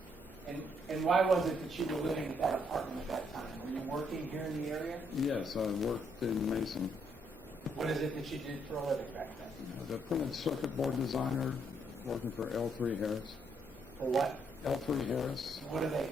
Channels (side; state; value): both; normal; correlation 0.73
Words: And why was it that you were living at that apartment at that time? Were you working here in the area? Yes, I worked in Mason. What is it that you did for a living back then? The printed circuit board designer, working for L3 Harris. For what? L3 Harris. What do they